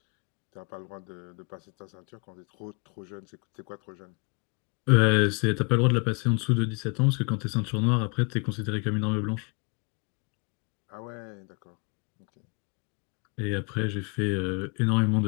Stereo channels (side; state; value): right; quieter; 34.2 dB